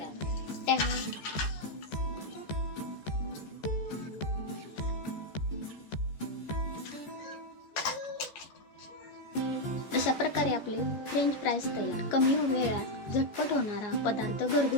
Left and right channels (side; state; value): right; late; 14 ms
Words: अशा प्रकारे आपले फ्रेंच फ्राईज तयार. कमी वेळात झटपट होणारा पदार्थ,